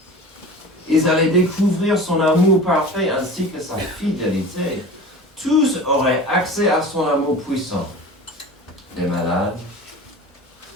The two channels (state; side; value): normal; both; correlation 0.36